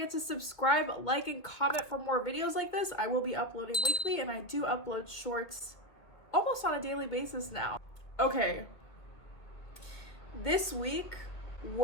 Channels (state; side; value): late; right; 2.2 ms